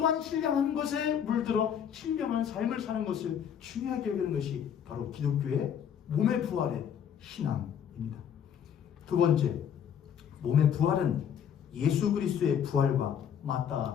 신령한 것에 물들어 신령한 삶을 사는 것을 중요하게 여기는 것이 바로 기독교의 몸의 부활의 신앙입니다. 두 번째, 몸의 부활은 예수 그리스도의 부활과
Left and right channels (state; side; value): quieter; right; 8.5 dB